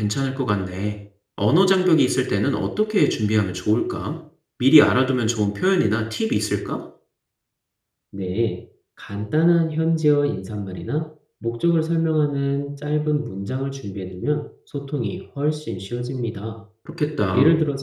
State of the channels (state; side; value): identical; both; correlation 1.00